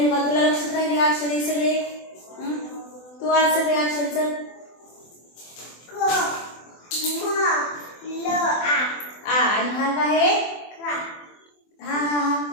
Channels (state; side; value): late; right; 24 ms